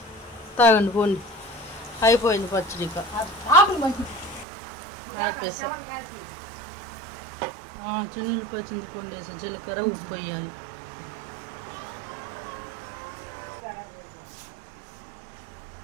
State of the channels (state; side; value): drops out; left; at 4.5 s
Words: తాగండి పోండి. అయిపోయింది పచ్చడి. చిన్నులు పచ్చింది పండు వేసి జీలకర్ర ఉప్పు వేయాలి.